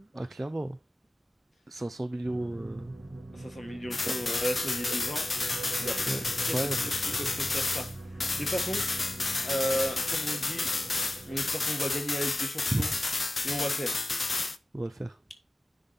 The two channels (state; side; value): normal; both; correlation 0.95